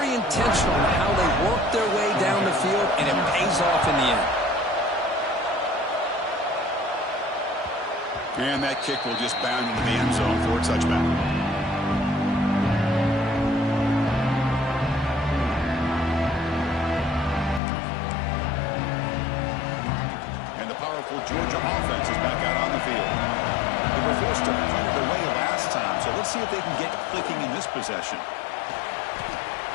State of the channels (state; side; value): drops out; right; at 17.6 s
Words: intentional in how they worked their way down the field, and it pays off in the end. And that kick will just bound into the end zone for a touchback. Powerful Georgia offense is back out on the field. They were forced to punt it away last time, so let's see if they can get clicking in this possession.